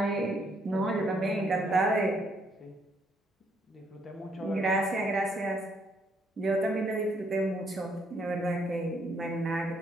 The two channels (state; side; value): normal; both; correlation 0.70